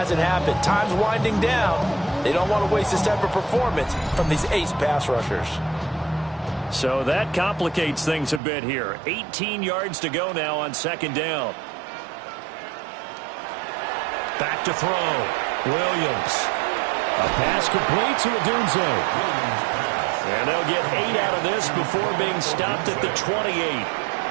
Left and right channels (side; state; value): left; drops out; at 8.4 s